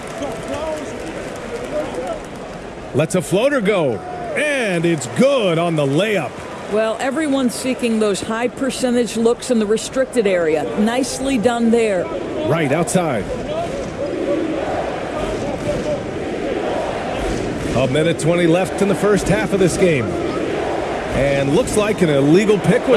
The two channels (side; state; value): both; identical; correlation 1.00